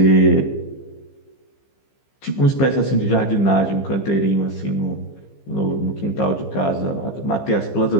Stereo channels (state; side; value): late; right; 15 ms